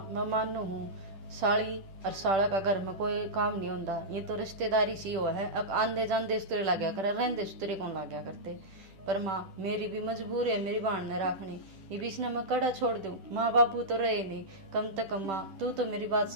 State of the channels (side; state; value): left; late; 10 ms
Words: मैं मानू हूँ, साड़ी और साड़ा का घर में कोई काम नहीं होता, ये तो रिश्तेदारी सी हुआ है। अब आंदे जाते सुतरे लग्या करे, रहते सुतरे कौन लग्या करते। पर माँ मेरी भी मजबूरी है मेरी बहन ने रखनी, ये बीच ने मैं कड़ा छोड़ दूं, माँ बापू तो रहे नहीं, कम से कम माँ तू तो मेरी बात